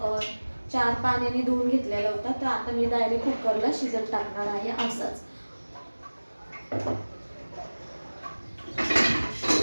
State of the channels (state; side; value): inverted; both; correlation -1.00